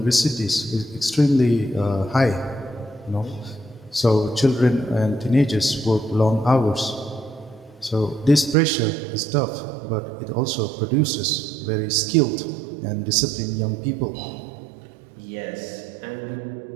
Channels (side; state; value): left; drops out; at 8.6 s